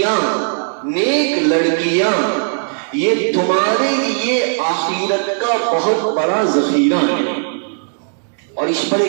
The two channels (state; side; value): silent; left; digital silence